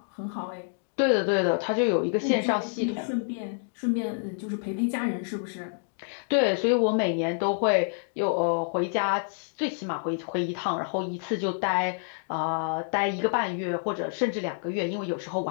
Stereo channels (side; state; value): right; silent; digital silence